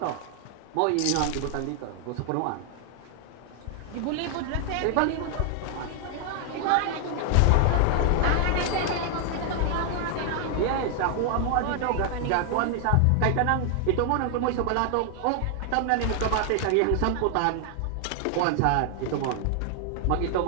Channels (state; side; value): different; both; correlation 0.00